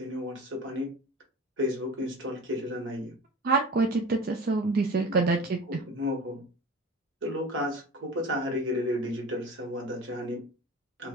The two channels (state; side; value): normal; both; correlation 0.36